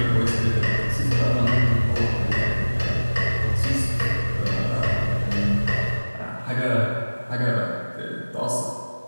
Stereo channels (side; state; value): both; inverted; correlation -1.00